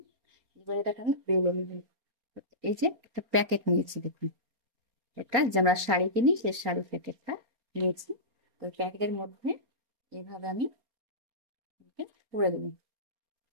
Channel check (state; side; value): late; left; 4.3 ms